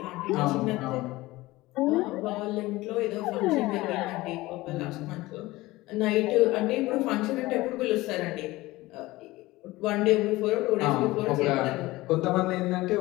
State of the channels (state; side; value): quieter; right; 19.3 dB